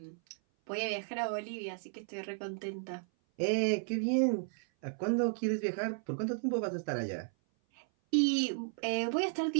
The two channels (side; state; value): left; silent; 55 dB below the other